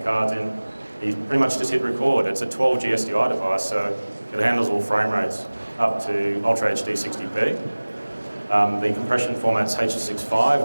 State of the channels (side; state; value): both; inverted; correlation -1.00